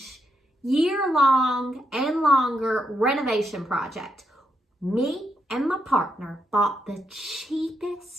year-long and longer renovation project. Me and my partner bought the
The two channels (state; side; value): normal; both; correlation 0.81